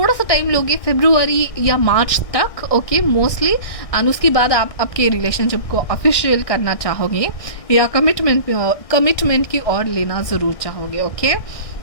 सा टाइम लोगे, फरवरी या मार्च तक. Okay, mostly. एंड उसके बाद आप आपके रिलेशनशिप को ऑफिशियल करना चाहोगे या कमिटमेंट की ओर लेना ज़रूर चाहोगे. Okay,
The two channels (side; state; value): right; late; 1.6 ms